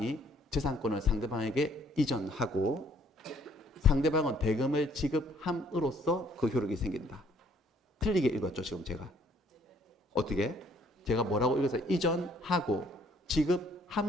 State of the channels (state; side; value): normal; both; correlation 0.63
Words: 재산권을 상대방에게 이전하고 상대방은 대금을 지급함으로써 그 효력이 생긴다. 틀리게 읽었죠, 지금 제가. 어떻게? 제가 뭐라고 읽어서 이전하고